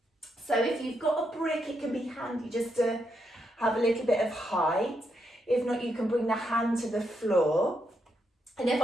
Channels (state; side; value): normal; both; correlation 0.80